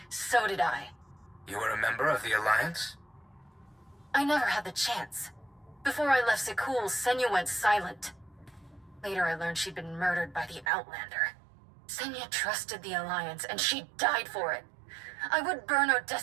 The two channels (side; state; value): left; drops out; at 10.7 s